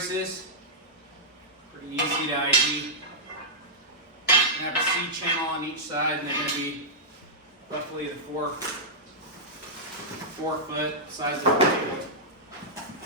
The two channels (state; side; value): normal; both; correlation -0.12